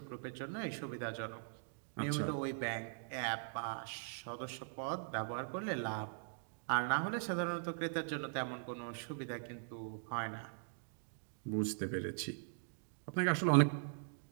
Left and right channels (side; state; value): left; silent; digital silence